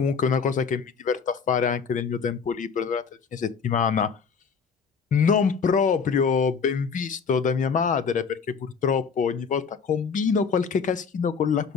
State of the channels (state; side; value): quieter; right; 5.9 dB